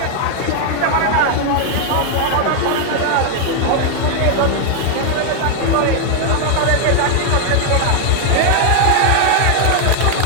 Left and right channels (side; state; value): both; different; correlation 0.00